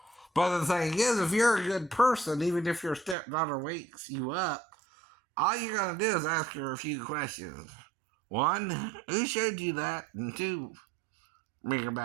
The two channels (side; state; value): left; drops out; at 3.2 s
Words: But the thing is, if you're a good person, even if your stepdaughter wakes you up, all you're going to do is ask her a few questions. One, who showed you that? And two, bring her